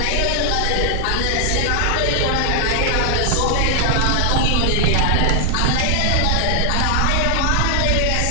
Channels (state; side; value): different; both; correlation 0.00